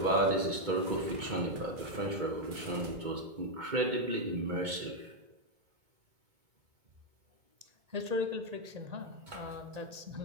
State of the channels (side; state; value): left; late; 2.2 ms